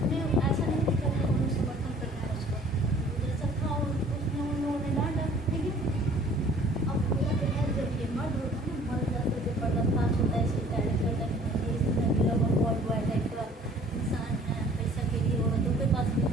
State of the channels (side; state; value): both; normal; correlation 0.53